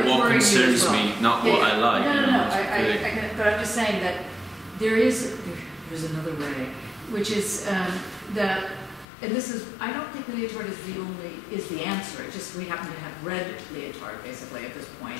concerns me, not what I like. No. But I'm just saying that there's another way, which is that, and this is, I don't think Lyotard is the answer. It's just we happen to have read Lyotard basically at this point.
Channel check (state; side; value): drops out; right; at 9.1 s